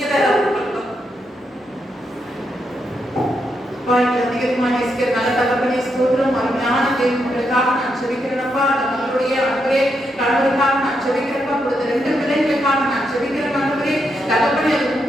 தான் அதிகமாக நேசிக்கிற நல்ல தகப்பனே ஸ்தோத்திரம். அருமையான தேவனுக்காக நான் செபிக்கிறேன்ப்பா. அந்த மகளுடைய அன்பரே கணவருக்காக நான் செபிக்கிறேன்ப்பா. கொடுத்த 2 பிள்ளைகளுக்காக நான் செபிக்கிறேன் ஆண்டவரே. தகப்பனே அது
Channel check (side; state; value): both; normal; correlation 0.81